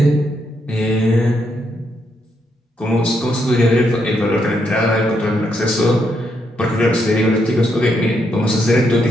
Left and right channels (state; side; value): normal; both; correlation 0.78